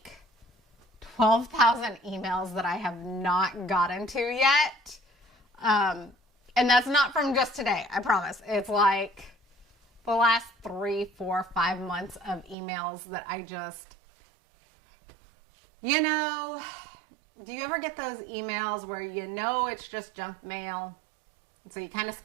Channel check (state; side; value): drops out; left; at 12.6 s